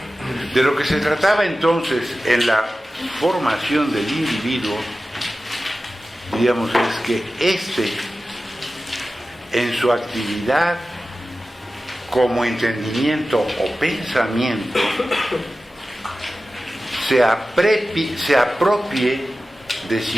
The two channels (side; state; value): both; normal; correlation 0.95